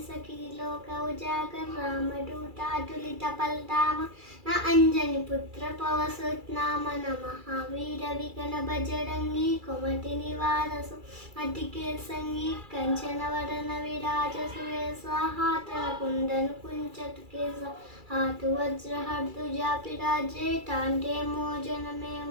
सखी लोक उजागर रामदूतातुलित बलधाम न अंजनी पुत्र पवसुत नाम न महावीर विगण बजरंगी कुमति निवार अतिके संगी कंचन वरन विराज सुवेशा हाथ कुंदन कुंचत केसा हाथ वज्र हर्दुजा पिराजे टांटे मोजन में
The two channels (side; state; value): left; late; 2.3 ms